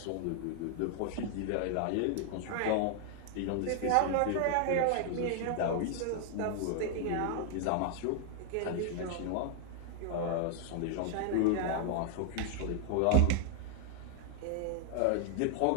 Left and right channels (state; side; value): different; both; correlation 0.00